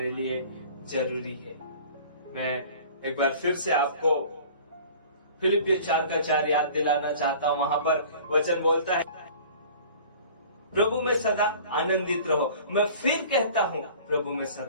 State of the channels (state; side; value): inverted; both; correlation -0.45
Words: लिए जरूरी है। मैं एक बार फिर से आपको फिलिपियों 4:4 याद दिलाना चाहता हूँ। वहां पर वचन बोलता है, प्रभु में सदा आनंदित रहो। मैं फिर कहता हूँ, प्रभु में